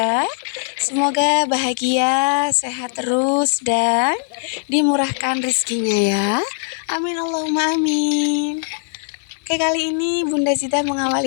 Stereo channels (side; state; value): right; silent; 59 dB below the other